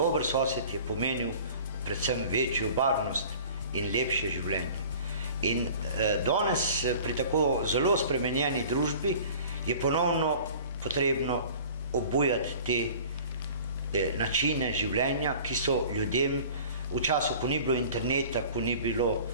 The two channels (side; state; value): both; inverted; correlation -0.44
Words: sosed je pomenil predvsem večjo varnost in lepše življenje. In danes pri tako zelo spremenjeni družbi je ponovno potrebno obujati te načine življenja, ki so ljudem v času, ko ni bilo interneta, ko ni bilo